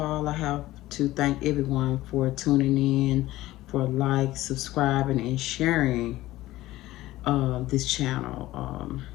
I have to thank everyone for tuning in, for subscribing, and sharing this channel.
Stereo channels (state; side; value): quieter; right; 16.5 dB